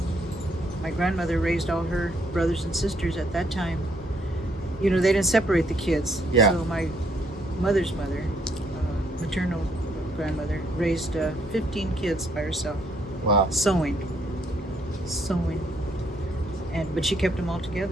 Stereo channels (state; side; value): normal; both; correlation 0.70